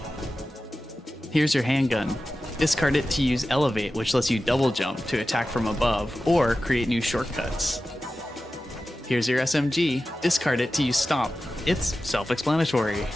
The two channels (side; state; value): both; normal; correlation 0.94